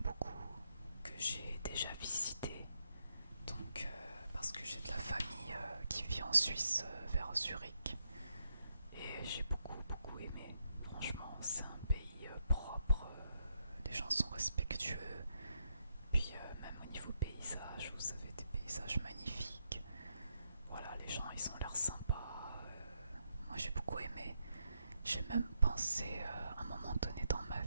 beaucoup, que j'ai déjà visité. Donc parce que j'ai de la famille qui vit en Suisse vers Zurich. Et j'ai beaucoup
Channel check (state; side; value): inverted; both; correlation -0.80